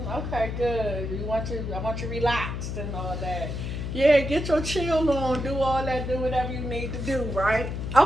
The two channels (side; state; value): left; noise; hum, 4 dB below the sound